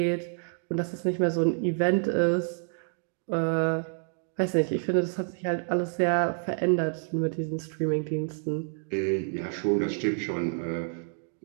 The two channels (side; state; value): left; silent; 58 dB below the other